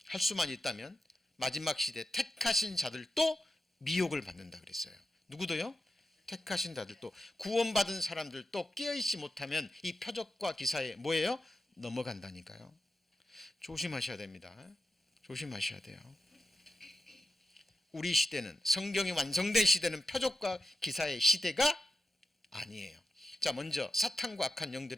할 수만 있다면 마지막 시대 택하신 자들도 미혹을 받는다 그랬어요. 누구도요? 택하신 자들도, 구원받은 사람들도 깨어있지 못하면 이 표적과 기사에 뭐예요? 넘어간다니까요. 조심하셔야 됩니다. 조심하셔야 돼요. 우리 시대는, 성경이 완성된 시대는 표적과 기사의 시대가 아니에요. 자, 먼저 사탄과 악한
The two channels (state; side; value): normal; both; correlation 0.90